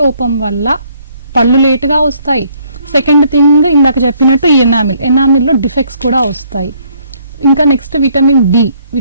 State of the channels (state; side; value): inverted; both; correlation -0.66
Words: లోపం వల్ల పళ్ళు లేటుగా వస్తాయి. సెకండ్ థింగ్, ఇందాక చెప్పినట్టు ఈ ఎనామిల్లో డిఫెక్ట్స్ కూడా వస్తాయి. ఇంకా next vitamin D.